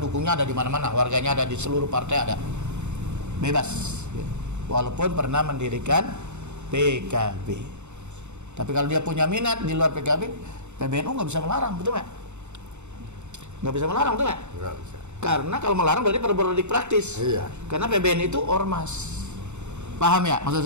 ada di mana-mana, warganya ada di seluruh partai ada. Bebas. Walaupun pernah mendirikan PKB. Tapi kalau dia punya minat di luar PKB, PBNU nggak bisa melarang, betul nggak? Nggak bisa melarang, betul nggak? Nggak bisa. Karena kalau melarang berarti berpolitik praktis. Iya. Karena PBNU itu ormas. Paham ya maksud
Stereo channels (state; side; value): late; left; 0.83 ms